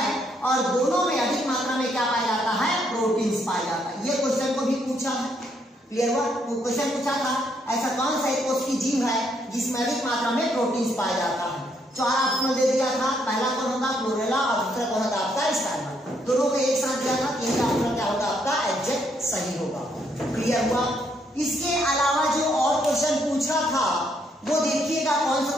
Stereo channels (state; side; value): normal; both; correlation 0.73